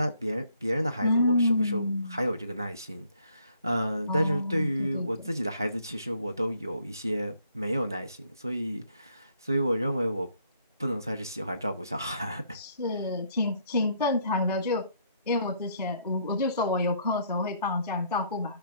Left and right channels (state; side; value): inverted; both; correlation -0.67